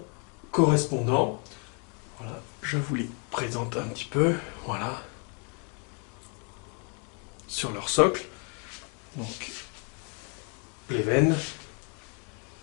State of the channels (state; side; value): quieter; right; 37.5 dB